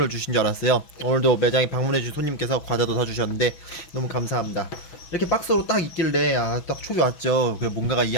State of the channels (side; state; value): right; late; 6.1 ms